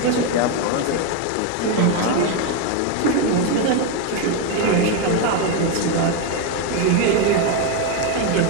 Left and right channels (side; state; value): both; different; correlation 0.02